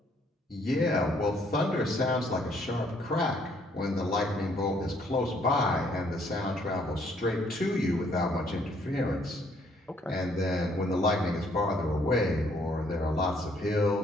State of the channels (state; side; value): normal; both; correlation 0.66